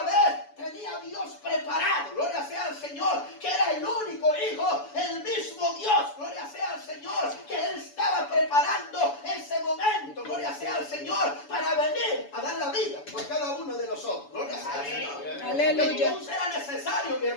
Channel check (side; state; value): right; late; 7.0 ms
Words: vez, tenía a Dios preparado, gloria sea al Señor, que era el único hijo, el mismo Dios, gloria sea al Señor, que Él estaba preparando ese momento, gloria sea al Señor, para venir a dar la vida por cada uno de nosotros, gloria sea al Señor. Aleluya. Entonces era necesario, mi